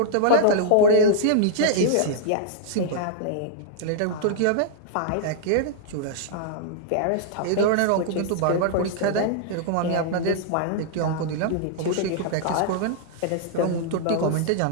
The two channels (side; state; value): both; different; correlation -0.01